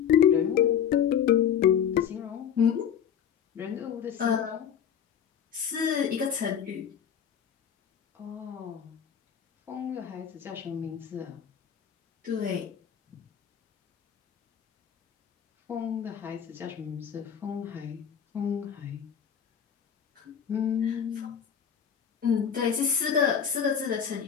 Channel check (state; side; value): quieter; right; 8.2 dB